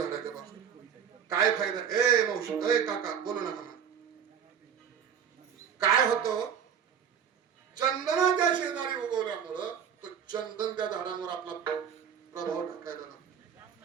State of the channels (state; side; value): quieter; left; 8.0 dB